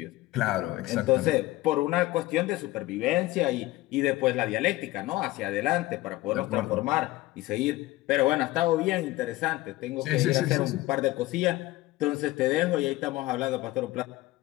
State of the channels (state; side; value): quieter; right; 18.1 dB